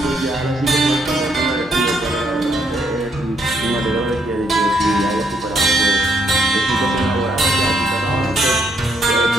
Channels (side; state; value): both; normal; correlation 0.74